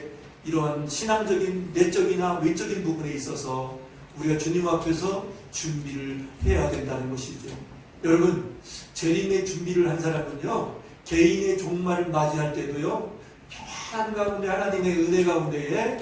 이러한 신앙적인 내적이나 외적인 부분에 있어서 우리가 주님 앞에서 준비를 해야 된다는 것이죠. 여러분, 재림의 준비를 한 사람은요, 개인의 종말을 맞이할 때도요, 평안 가운데 하나님의 은혜 가운데에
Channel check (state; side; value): identical; both; correlation 1.00